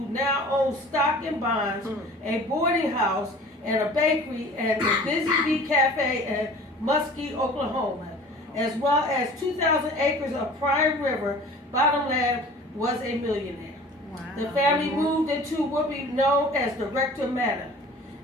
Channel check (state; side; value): normal; both; correlation 0.44